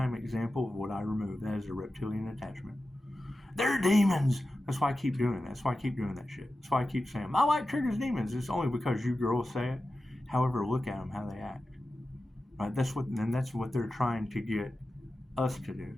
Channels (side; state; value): both; normal; correlation 0.93